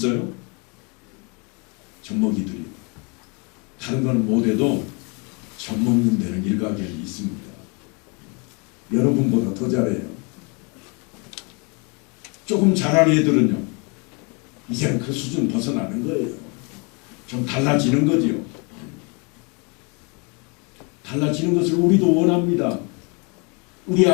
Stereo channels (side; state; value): right; quieter; 32.3 dB